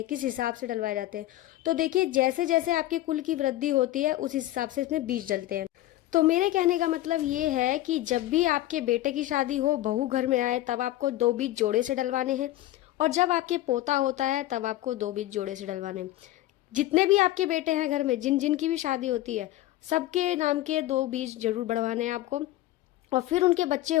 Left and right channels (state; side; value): quieter; right; 15.4 dB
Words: किस हिसाब से डलवाए जाते हैं। तो देखिए, जैसे जैसे आपके कुल की वृद्धि होती है उस हिसाब से इसमें बीज डलते हैं। तो मेरे कहने का मतलब ये है कि जब भी आपके बेटे की शादी हो, बहू घर में आए, तब आपको 2 बीज जोड़े से डलवाने हैं, और जब आपके पोता होता है तब आपको 2 बीज जोड़े से डलवाने हैं। जितने भी आपके बेटे हैं घर में, जिन जिन की भी शादी होती है, सबके नाम के 2 बीज जरूर बढ़वाने हैं आपको। और फिर उनके बच्चे